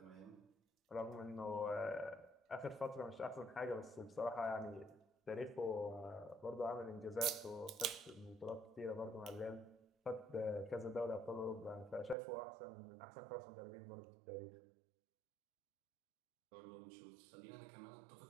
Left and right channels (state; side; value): drops out; left; at 12.2 s